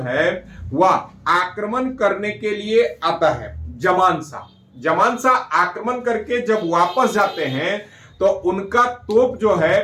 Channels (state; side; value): identical; both; correlation 1.00